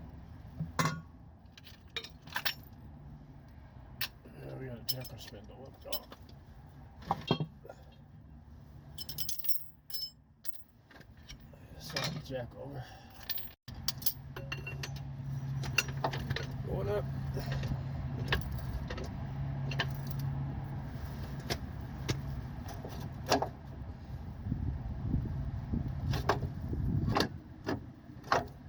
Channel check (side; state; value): both; identical; correlation 1.00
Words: Yeah, we got a jacker spindle up, y'all. Slide the jack over. Going up.